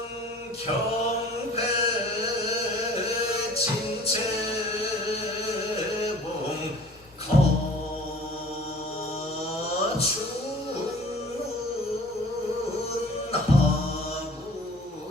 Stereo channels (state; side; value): normal; both; correlation 0.48